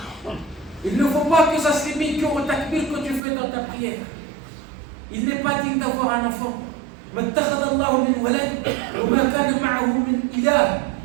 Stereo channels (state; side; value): drops out; left; at 3.2 s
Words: Il ne faut pas que ça se limite qu'au takbir que tu fais dans ta prière. Il n'est pas digne d'avoir un enfant. ما اتخذ الله من ولد وما كان معه من إله